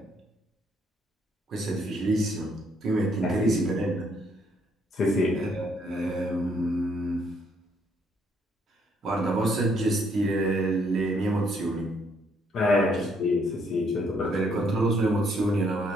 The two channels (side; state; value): both; normal; correlation 0.69